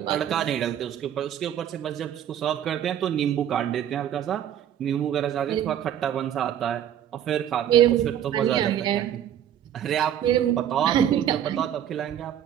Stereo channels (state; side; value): quieter; left; 10.3 dB